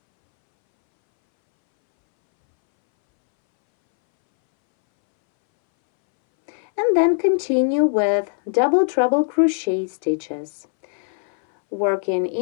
And then continue with double treble crochet stitches, working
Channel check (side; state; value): right; silent; 63 dB below the other